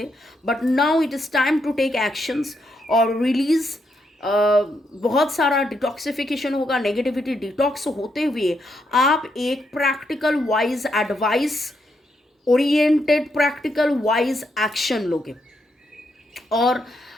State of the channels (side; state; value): both; normal; correlation 0.79